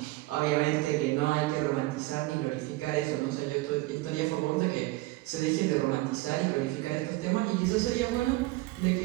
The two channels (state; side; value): quieter; left; 20.1 dB